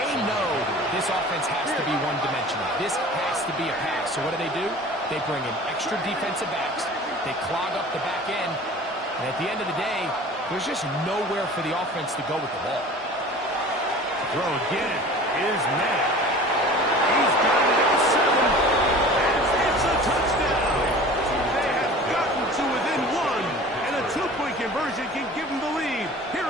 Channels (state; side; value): normal; both; correlation 0.42